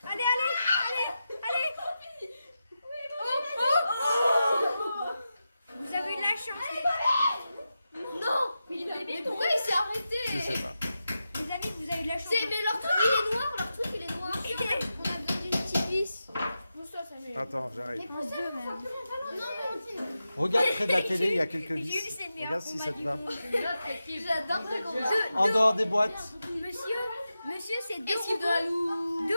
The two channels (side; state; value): both; inverted; correlation -0.90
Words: Allez. Vous avez eu de la chance. Non. Mais pourquoi il s'est arrêté? Je sais pas. Les amis, vous avez eu de la chance. Mais leur truc il est noir, On a besoin d'une petite vis. Attends, j'arrive. Non, mais Regarde près de la télé, il y a quelques Jules, vis. c'est le meilleur Regarde si ça te va. j'adore ce combat. En dehors des boîtes. Monsieur, c'est deux Esquive de la loup.